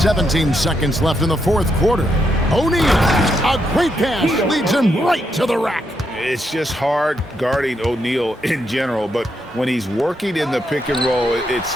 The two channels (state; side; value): normal; both; correlation 0.80